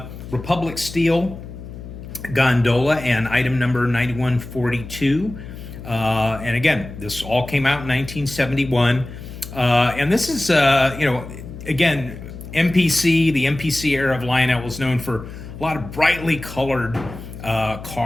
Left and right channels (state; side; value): noise; left; hum, 12 dB below the sound